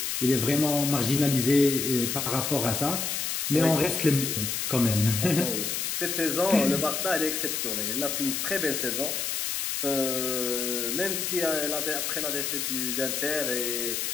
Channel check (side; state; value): left; noise; hiss, 1 dB below the sound